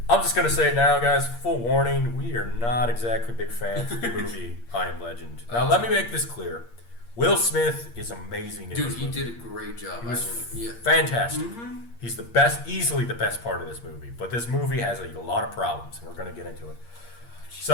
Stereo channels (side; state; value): right; late; 8.6 ms